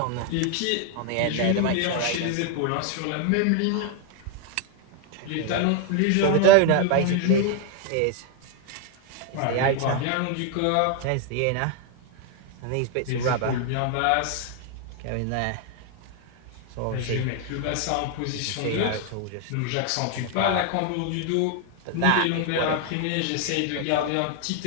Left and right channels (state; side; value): different; both; correlation 0.01